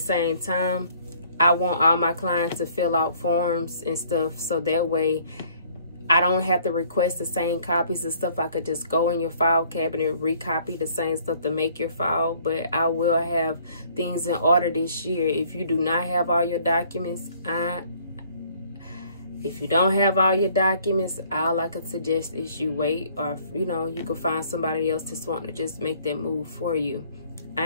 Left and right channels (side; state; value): both; inverted; correlation -0.59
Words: time, I want all my clients to fill out forms and stuff, so that way I don't have to request the same copies and stuff. I could just go in your file cabinet, recopy the same stuff to make your file. But I will have things in order this year. If you do not have all your documents, if you don't have all your documents, all I could suggest is you wait, or you know, you can find somebody else that's wanting to just make that move for you.